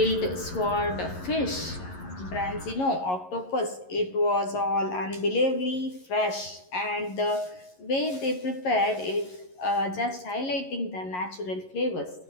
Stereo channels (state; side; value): late; right; 11 ms